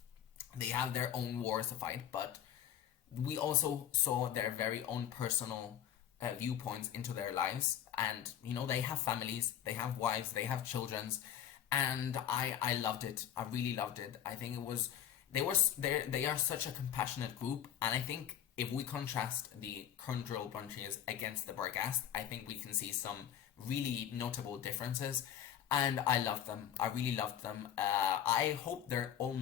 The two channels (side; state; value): right; quieter; 10.2 dB